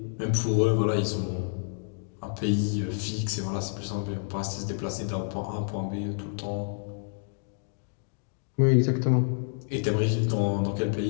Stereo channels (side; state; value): right; silent; digital silence